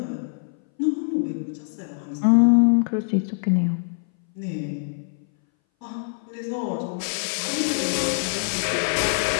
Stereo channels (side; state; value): right; silent; 60 dB below the other